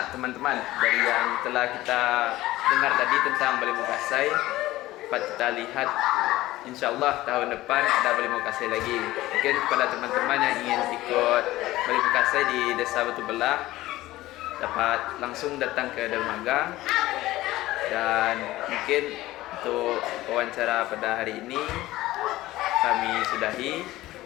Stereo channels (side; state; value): right; quieter; 16.9 dB